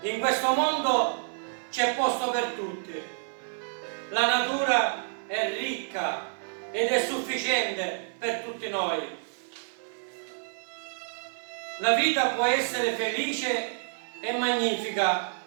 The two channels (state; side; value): silent; left; 59 dB below the other